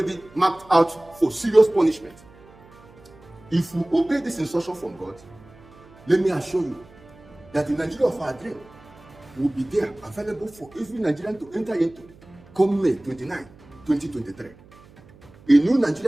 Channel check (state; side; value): noise; right; hum, 24 dB below the sound